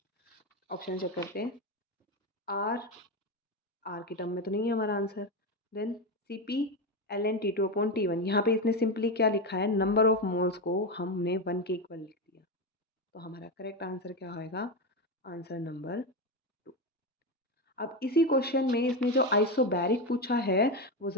Option check करते हैं। R, R की टर्म में तो नहीं है हमारा answer, then CP Ln T2/T1। यहाँ पे इसने सिंपली क्या लिखा है, नंबर ऑफ मोल्स को हमने 1 के इक्वल लिख दिया। तो हमारा करेक्ट आंसर क्या होएगा, आंसर नंबर 2। अब इसी क्वेश्चन में इसने जो आइसोबैरिक पूछा है, वो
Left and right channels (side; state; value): both; normal; correlation 0.13